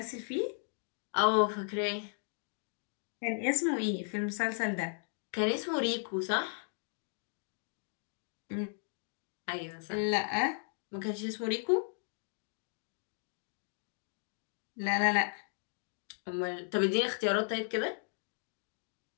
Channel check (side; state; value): right; silent; 54 dB below the other